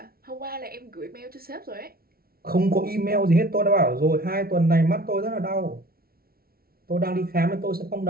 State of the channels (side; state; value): left; late; 0.44 ms